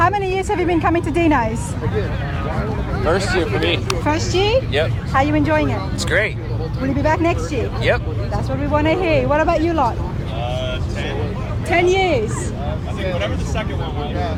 many years have you been coming to Dino's? First year for me. First year? Yep. How are you enjoying it? It's great. Will you be back next year? Yep. That's what we want to hear. What about you lot? 10. 10 years. I think whatever the second one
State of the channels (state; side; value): identical; both; correlation 1.00